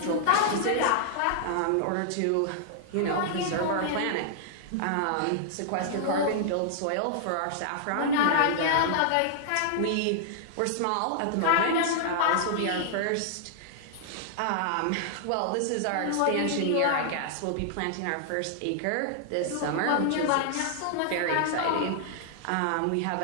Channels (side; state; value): both; different; correlation -0.01